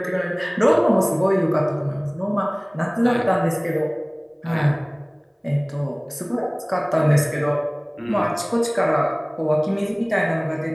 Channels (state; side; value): identical; both; correlation 1.00